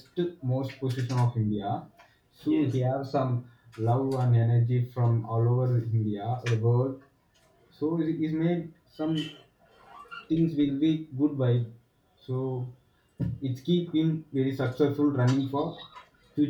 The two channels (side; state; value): both; identical; correlation 1.00